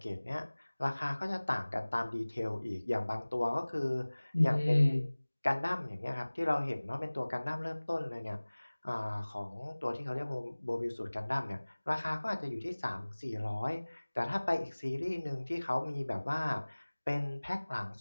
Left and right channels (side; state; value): both; inverted; correlation -1.00